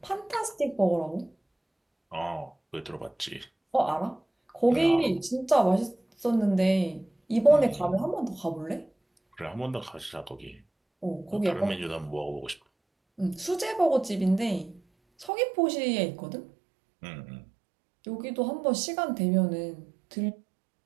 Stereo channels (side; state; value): left; drops out; at 15.3 s